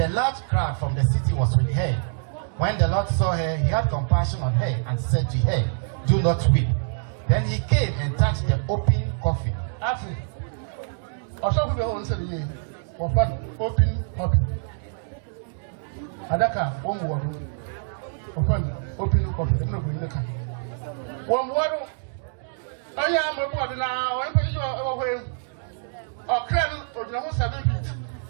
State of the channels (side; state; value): left; silent; digital silence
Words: a large crowd from the city was with her. When the Lord saw her, he had compassion on her and said to her, "Do not weep." Then he came and touched the open coffin. After, also we will answer the year. Open coffin. Adaka, one word. Open coffin. I'm not going to come. One word. I am a word now. I'm going to go away. Ɔkrɔnkrɔnyi or the 7 feet.